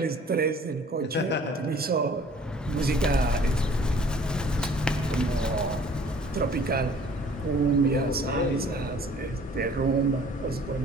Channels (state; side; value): normal; both; correlation 0.53